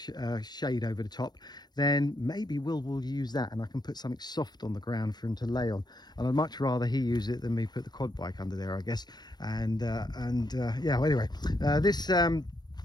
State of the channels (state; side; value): late; right; 0.20 ms